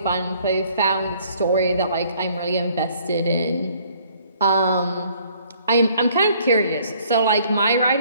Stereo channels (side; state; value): both; inverted; correlation -0.61